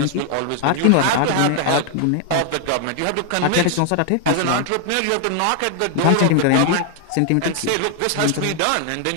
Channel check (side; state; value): both; different; correlation 0.00